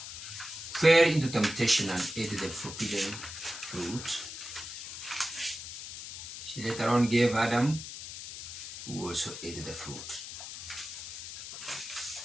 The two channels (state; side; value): noise; left; hiss, 9 dB below the sound